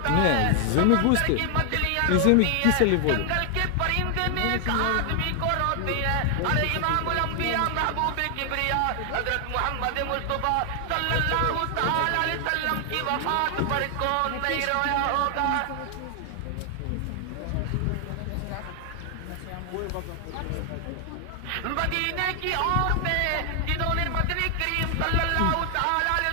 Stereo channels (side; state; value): both; different; correlation 0.00